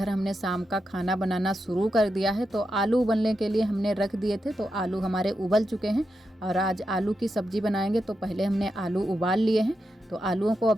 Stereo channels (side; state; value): both; normal; correlation 0.87